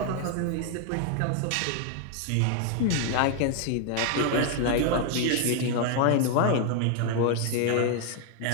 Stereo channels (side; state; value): both; different; correlation 0.00